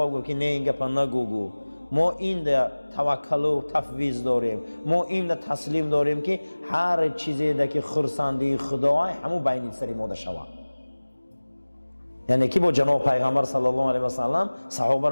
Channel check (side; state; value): both; inverted; correlation -1.00